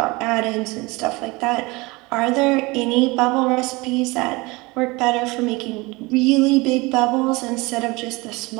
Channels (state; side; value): quieter; left; 24.0 dB